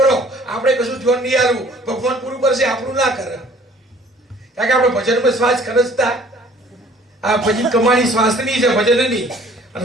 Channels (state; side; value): normal; both; correlation 0.54